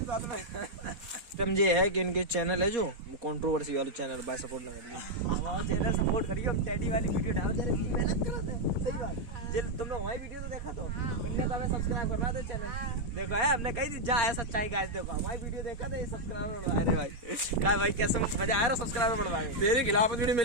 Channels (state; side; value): late; left; 4.3 ms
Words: साथ में। समझे है कि इनके चैनल है जो कंट्रोवर्सी वाले चैनल, बाय सपोर्ट ना करिए, हमारा चैनल सपोर्ट करिए। हम टैडी वाली वीडियो डाल दे रहे, मेहनत करो तो सही बात। जे तुम लोग हमारी वीडियो तो देखा तो उनने तो हमें सब्सक्राइब करवा दो चैनल। देखो है हमने कही थी जा है सच्चाई गाइस, देखो हमारी वीडियो देखा था, सब्सक्राइबर बढ़वाए रे भाई। क्या भाई कैसे मजा आया? सब्सक्राइबर बढ़वाए। तेरे खिलाफ वीडियो